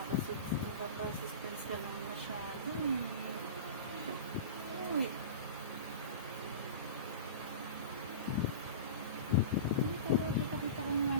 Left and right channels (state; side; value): inverted; both; correlation -0.31